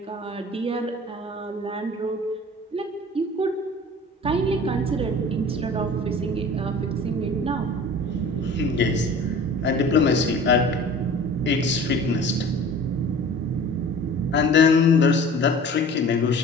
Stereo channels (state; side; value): normal; both; correlation 0.43